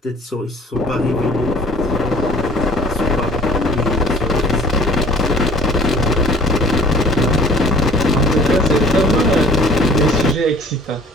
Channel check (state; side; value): normal; both; correlation 0.52